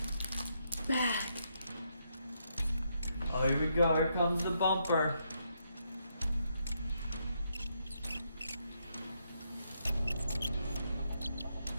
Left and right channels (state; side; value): inverted; both; correlation -0.78